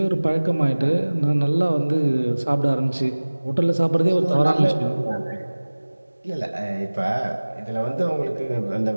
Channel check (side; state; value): both; inverted; correlation -1.00